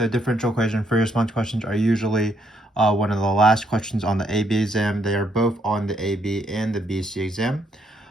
differential equation free response questions are usually one of the last questions on the AB exam. They are both on the AB and the BC exam.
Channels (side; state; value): both; normal; correlation 0.73